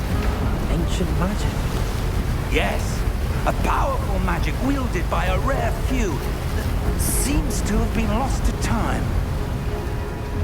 Ancient magic? Yes, a powerful magic wielded by a rare few that seems to have been lost to time.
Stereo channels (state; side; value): identical; both; correlation 1.00